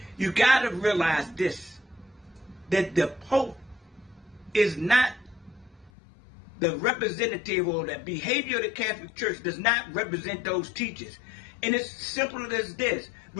You got to realize this, that the Pope is not the representative, or the behavior of the Catholic Church does not represent those teachers. And it's simple as this.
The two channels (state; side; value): drops out; right; at 5.9 s